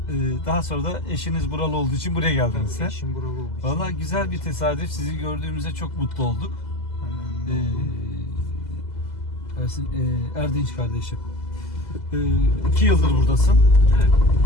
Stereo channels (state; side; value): late; right; 2.0 ms